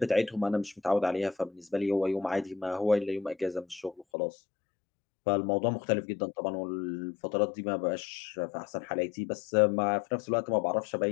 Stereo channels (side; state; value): right; drops out; at 4.0 s